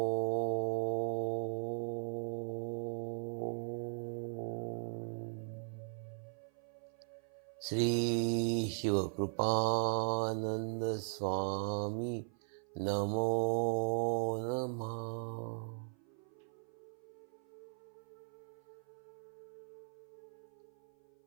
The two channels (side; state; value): left; silent; 52 dB below the other